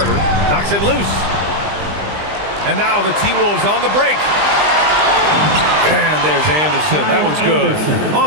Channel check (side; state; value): left; late; 20 ms